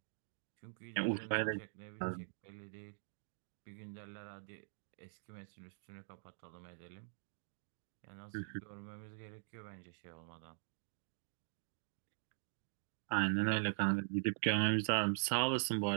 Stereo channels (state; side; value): silent; left; digital silence